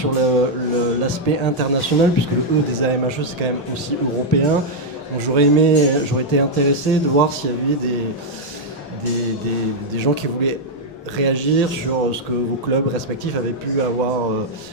l'aspect international, puisque le E des AMHE c'est quand même aussi européen. Donc j'aurais été intéressé de voir s'il y avait des gens qui voulaient réagir sur ce que vos clubs respectifs avaient pu avoir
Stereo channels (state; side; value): normal; both; correlation -0.02